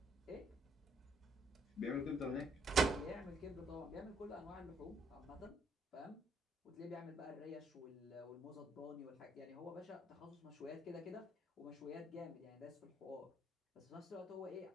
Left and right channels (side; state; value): both; normal; correlation 0.69